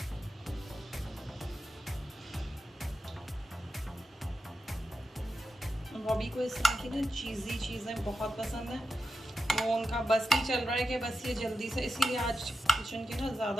बॉबी को इस तरह की ना चीज़ी चीज़ें बहुत पसंद है, वो उनका बस नहीं चल रहा है कि बस ये जल्दी से, इसीलिए आज किचन के ना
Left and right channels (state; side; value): normal; both; correlation 0.89